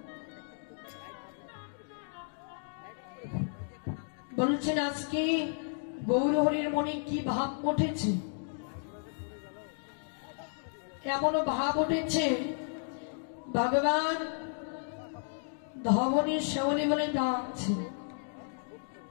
বলছেন আজকে গৌরহরির মনে কি ভাব উঠেছে? এমনও ভাব উঠেছে ভগবান ধবনী শ্যামলী বলে ডাকছে।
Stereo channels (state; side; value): silent; right; digital silence